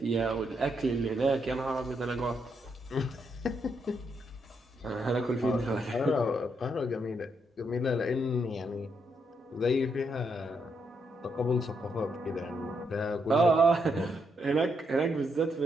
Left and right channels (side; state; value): both; normal; correlation 0.78